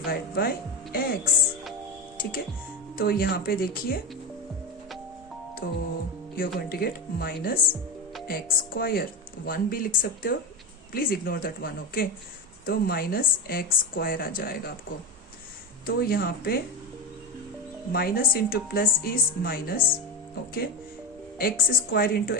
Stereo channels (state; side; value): normal; both; correlation 0.19